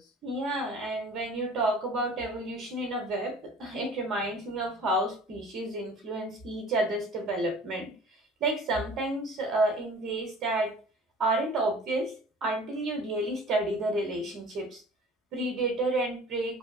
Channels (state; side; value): normal; both; correlation 0.45